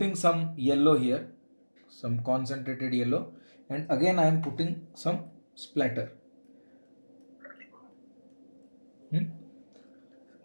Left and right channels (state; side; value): inverted; both; correlation -1.00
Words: some yellow here, some concentrated yellow, and again I am putting some splatter.